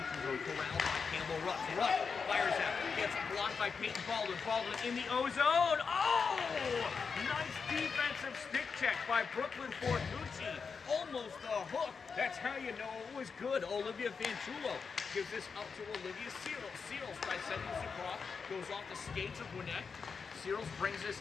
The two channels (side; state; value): right; quieter; 5.5 dB